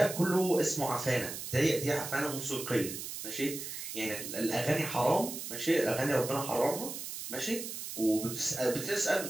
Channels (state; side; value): noise; right; hiss, 7 dB below the sound